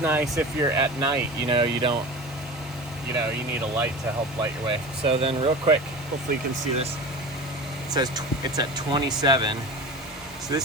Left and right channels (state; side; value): normal; both; correlation 0.32